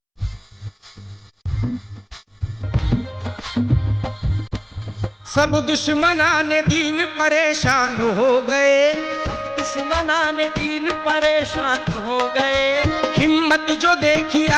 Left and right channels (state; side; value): identical; both; correlation 1.00